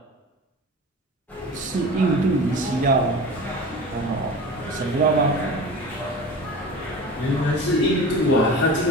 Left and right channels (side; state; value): both; normal; correlation 0.35